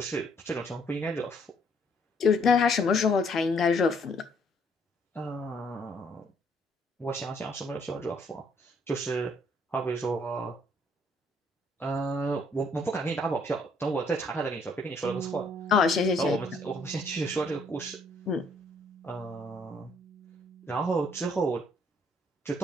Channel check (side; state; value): both; normal; correlation 0.66